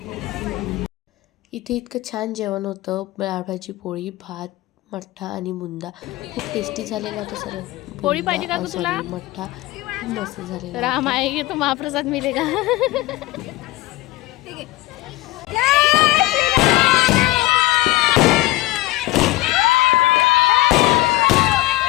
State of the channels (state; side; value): quieter; right; 18.2 dB